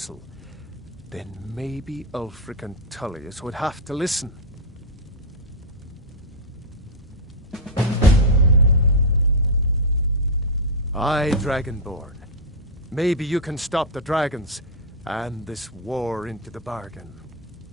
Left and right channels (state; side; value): normal; both; correlation -0.02